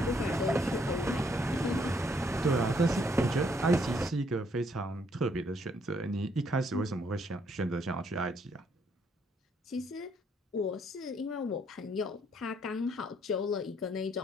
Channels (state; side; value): normal; both; correlation 0.69